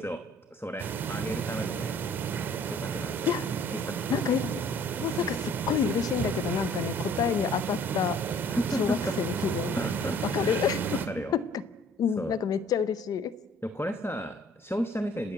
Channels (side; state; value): both; normal; correlation 0.55